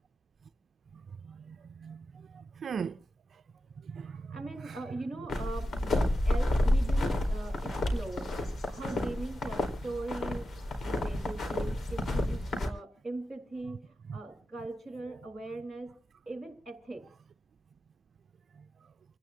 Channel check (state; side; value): normal; both; correlation 0.90